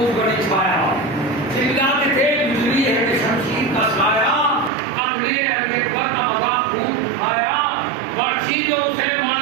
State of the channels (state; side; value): drops out; left; at 4.7 s